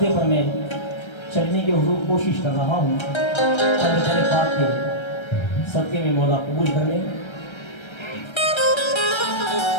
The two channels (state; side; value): late; right; 1.3 ms